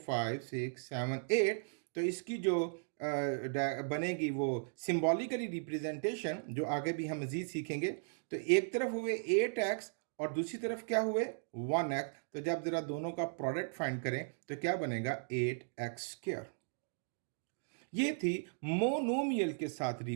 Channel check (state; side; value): silent; left; digital silence